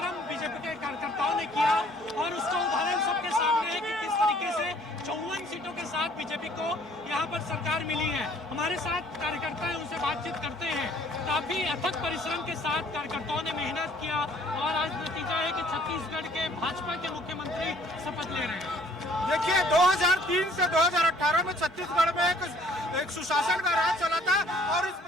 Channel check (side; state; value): both; normal; correlation 0.58